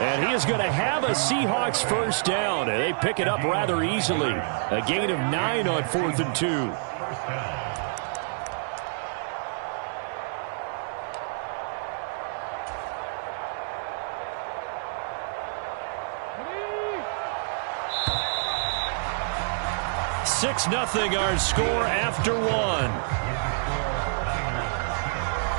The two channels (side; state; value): left; silent; digital silence